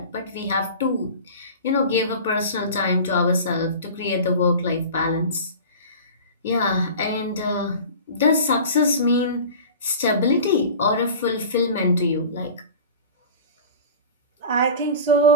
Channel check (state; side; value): inverted; both; correlation -0.36